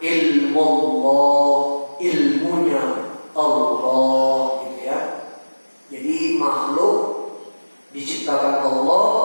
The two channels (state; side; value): inverted; both; correlation -1.00